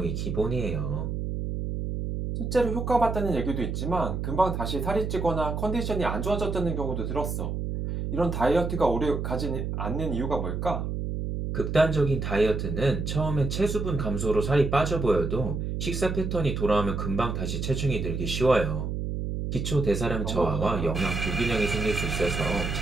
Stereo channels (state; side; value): noise; right; hum, 3 dB below the sound